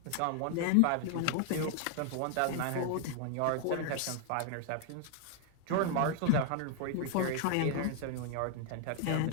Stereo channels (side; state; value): both; different; correlation 0.00